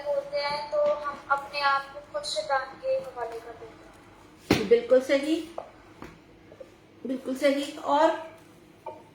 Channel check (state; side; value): identical; both; correlation 1.00